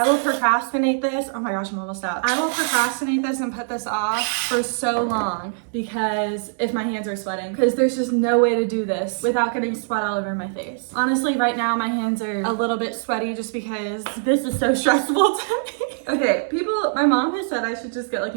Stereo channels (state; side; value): silent; left; digital silence